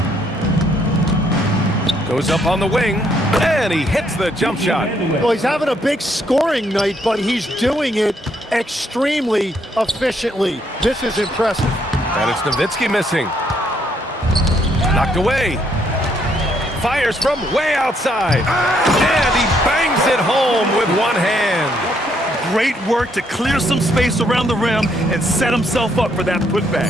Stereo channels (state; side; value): normal; both; correlation 0.71